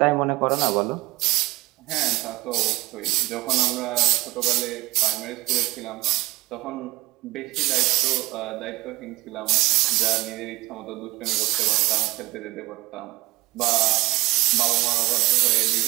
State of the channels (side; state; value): left; quieter; 20.5 dB